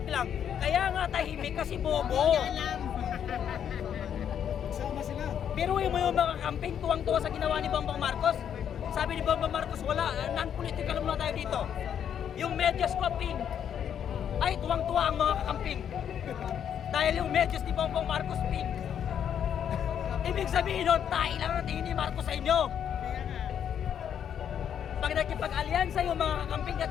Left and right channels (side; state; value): right; quieter; 8.9 dB